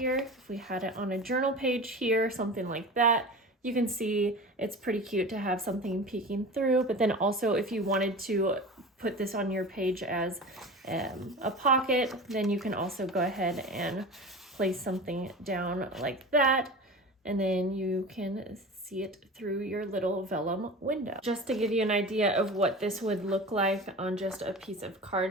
if we had it on a journal page here, something like that, you can see it's pretty cute to have something peeking through. But then also if you wanted to put this on your page as a pocket, then you can also go ahead and place something down like that. And then you can see it through your little vellum window. Just to give you an idea of what this would look like on just a piece of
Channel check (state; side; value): normal; both; correlation 0.33